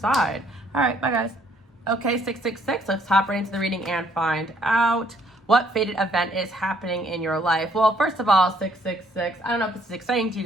All right, bye guys. Okay, 666, let's hop right into the reading and find out what fated event is happening in your life. Well, first of all, 666, I don't know if this is exciting to you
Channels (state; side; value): normal; both; correlation 0.65